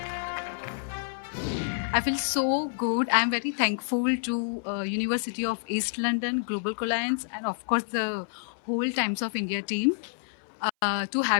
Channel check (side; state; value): right; silent; 58 dB below the other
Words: I feel so good. I'm very thankful to University of East London, Global Alliance, and of course the whole Times of India team to